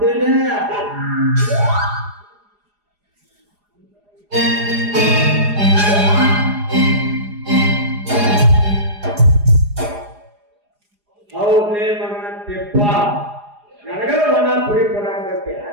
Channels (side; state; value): left; late; 4.9 ms